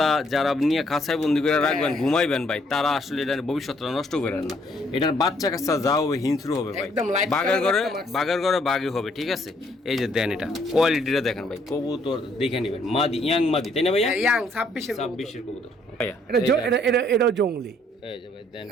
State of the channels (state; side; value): normal; both; correlation 0.67